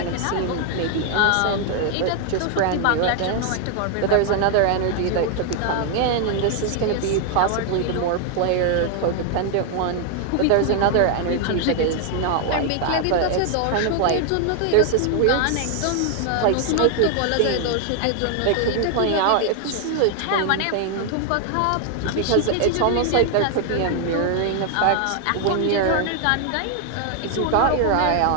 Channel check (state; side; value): different; both; correlation 0.00